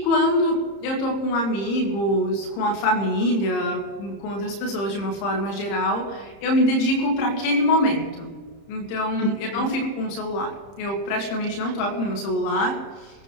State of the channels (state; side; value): late; right; 30 ms